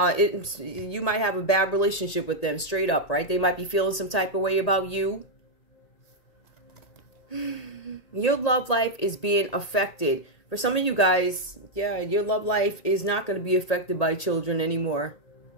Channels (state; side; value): late; right; 1.8 ms